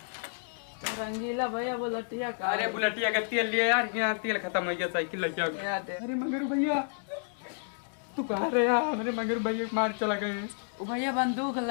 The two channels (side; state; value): right; silent; digital silence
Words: रंगीला भैया वो लटिया का। अरे बुलेटिया का तेल लिया यार, यहाँ तेल खत्म हो गया साइकिल लग गया। अरे मगर भैया तू कहाँ रहे यार? मेरे मगर भैया मार चला गए। वो भैया बंदूक